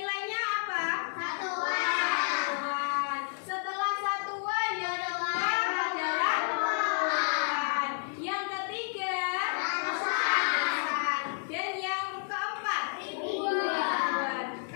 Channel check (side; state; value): right; silent; digital silence